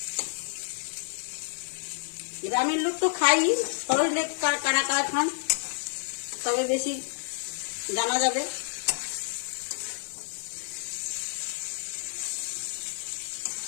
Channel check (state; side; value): silent; right; 56 dB below the other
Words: গ্রামের লোক তো খাই, শহরের কারা কারা খান তবে বেশি জানা যাবে।